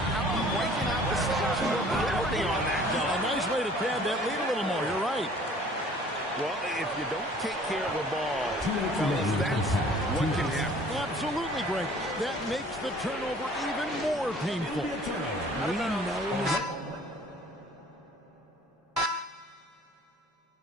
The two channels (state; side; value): normal; both; correlation 0.52